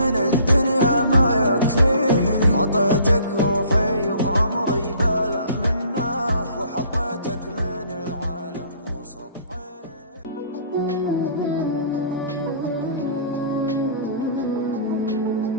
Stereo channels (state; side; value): inverted; both; correlation -0.53